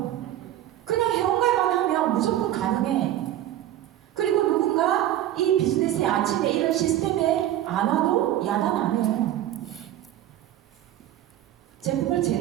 그냥 회원가입만 하면 무조건 가능해. 그리고 누군가 이 비즈니스의 아침에 이런 시스템에 안 와도 야단 안 해요. 제품을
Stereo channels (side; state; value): left; quieter; 12.7 dB